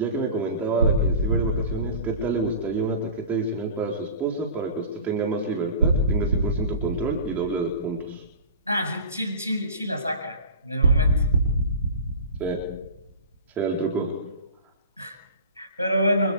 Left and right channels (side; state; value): both; inverted; correlation -0.36